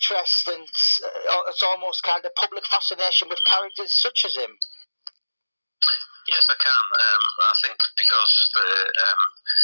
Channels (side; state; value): both; inverted; correlation -1.00